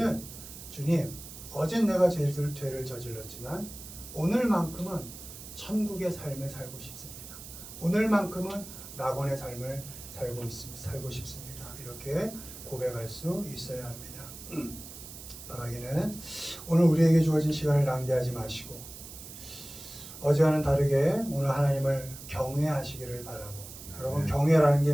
주님, 어젠 내가 죄를 저질렀지만 오늘만큼은 천국의 삶을 살고 싶습니다. 오늘만큼은 낙원의 삶을 살고 싶습니다. 이렇게 고백할 수 있어야 합니다. 바라기는 오늘 우리에게 주어진 시간을 낭비하지 마시고 어제와는 다르게 오늘 하나님을 경외하시기를 바라고. 여러분 경외라는 게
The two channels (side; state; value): right; noise; hiss, 14 dB below the sound